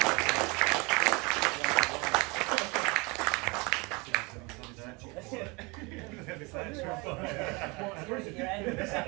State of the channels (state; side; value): quieter; left; 27.5 dB